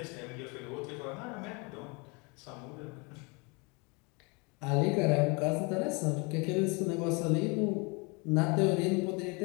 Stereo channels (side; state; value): right; quieter; 30.3 dB